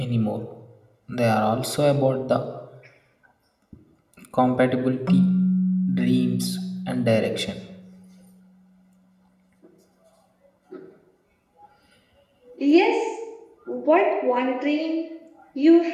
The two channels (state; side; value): identical; both; correlation 1.00